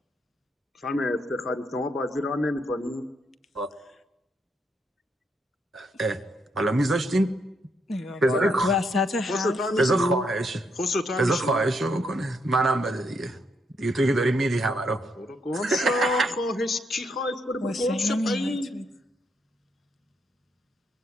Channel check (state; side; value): normal; both; correlation 0.77